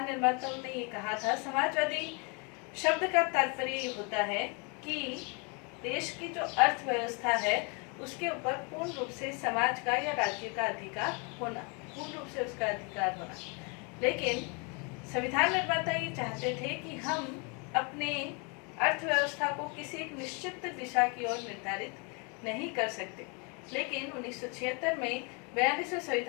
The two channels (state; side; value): quieter; right; 32.5 dB